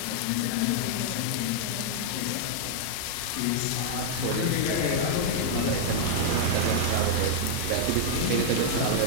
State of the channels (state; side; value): different; both; correlation -0.01